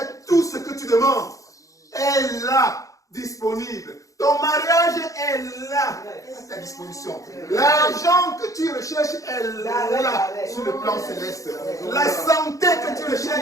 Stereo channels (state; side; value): late; right; 0.16 ms